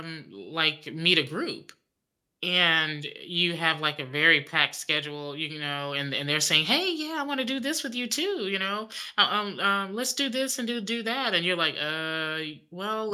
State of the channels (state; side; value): identical; both; correlation 1.00